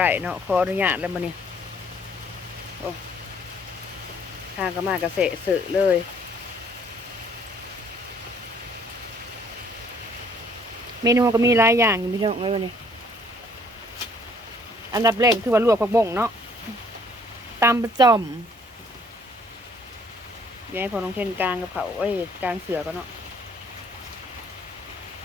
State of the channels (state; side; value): normal; both; correlation 0.61